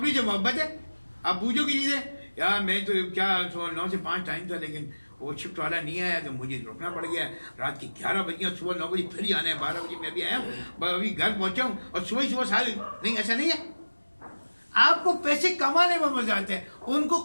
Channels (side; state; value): both; inverted; correlation -1.00